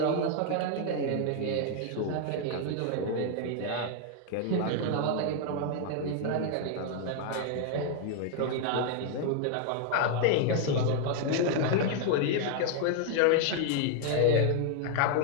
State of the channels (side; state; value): both; different; correlation 0.00